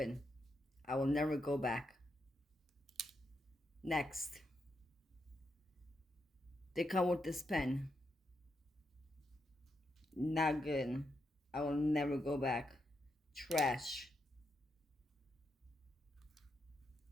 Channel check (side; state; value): both; normal; correlation 0.83